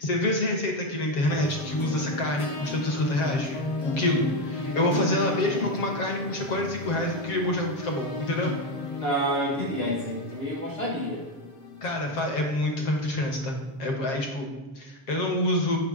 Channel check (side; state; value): right; late; 7.5 ms